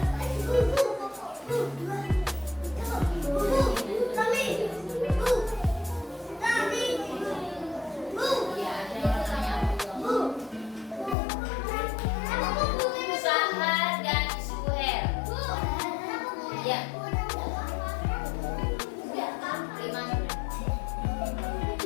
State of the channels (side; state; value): right; drops out; at 11.2 s